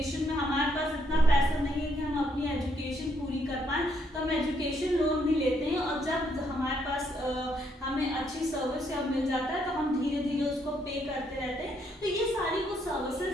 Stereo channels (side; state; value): both; normal; correlation 0.73